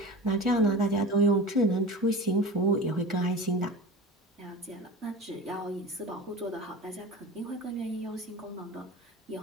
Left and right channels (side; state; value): both; normal; correlation 0.33